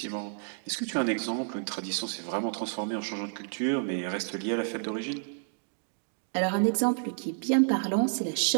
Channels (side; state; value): left; silent; digital silence